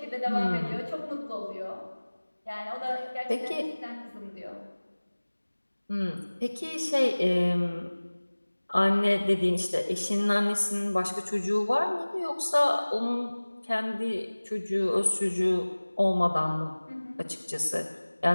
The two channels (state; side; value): inverted; both; correlation -1.00